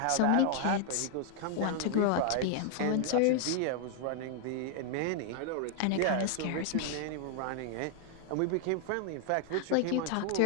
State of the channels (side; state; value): both; different; correlation 0.00